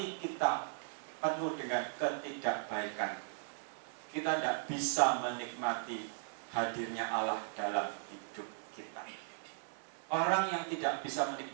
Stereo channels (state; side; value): silent; left; digital silence